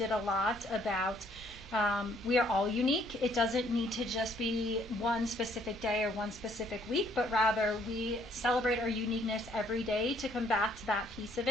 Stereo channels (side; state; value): both; normal; correlation 0.65